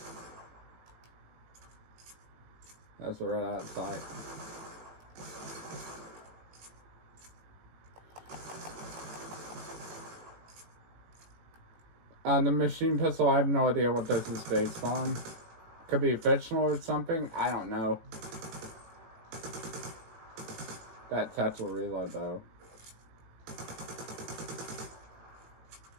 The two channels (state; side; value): late; left; 18 ms